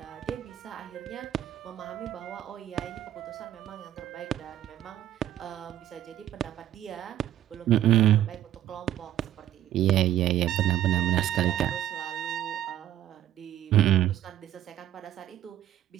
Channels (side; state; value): left; quieter; 12.2 dB